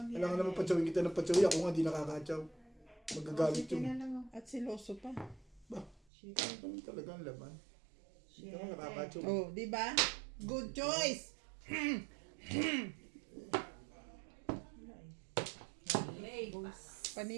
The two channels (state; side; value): drops out; left; at 6.0 s